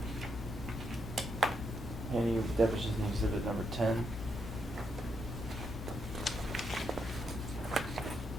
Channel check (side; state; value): both; normal; correlation 0.79